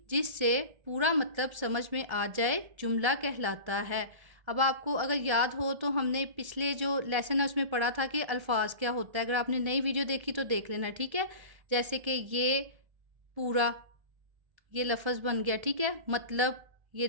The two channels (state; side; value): late; left; 1.3 ms